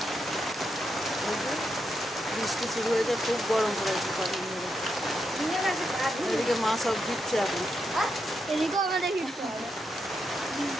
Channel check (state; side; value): normal; both; correlation 0.83